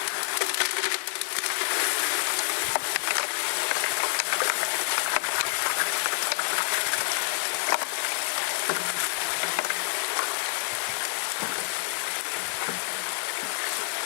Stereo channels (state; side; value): silent; right; 59 dB below the other